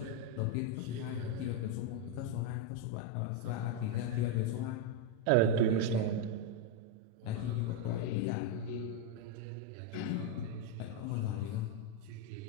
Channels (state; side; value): different; both; correlation 0.02